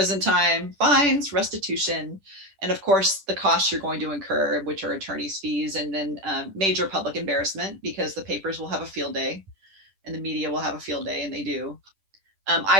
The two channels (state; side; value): late; left; 10 ms